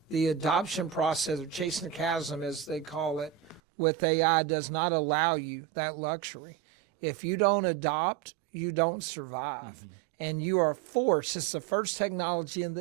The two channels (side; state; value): left; drops out; at 3.6 s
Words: The adoption process, or chasing the chasm as they call it, with AI does not allow you that luxury. If you don't adopt, you don't survive. Mm-hmm. And you are forced. It's the first technology in